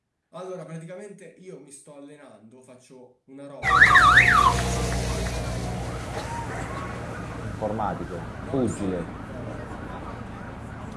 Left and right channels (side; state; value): both; identical; correlation 1.00